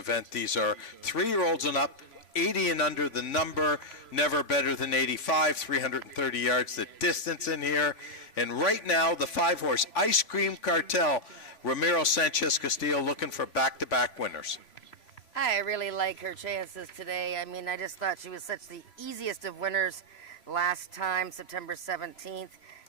These are 3-year-olds and up, 80 and under the number, never better than 85, 330 yards the distance in here. And right now, the 5-horse Ice Cream Cartel, Ramiro Sanchez Castillo looking for back-to-back winners. I really like her chances today. I mean, I just thought she was such the easiest of winners last time, September 17th.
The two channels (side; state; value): right; late; 3.5 ms